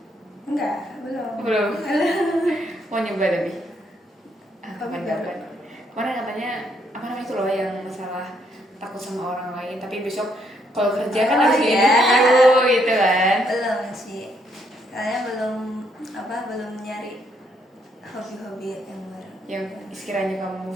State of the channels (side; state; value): both; normal; correlation 0.73